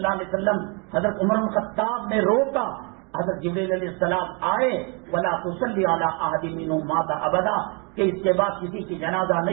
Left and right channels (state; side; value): quieter; left; 33.4 dB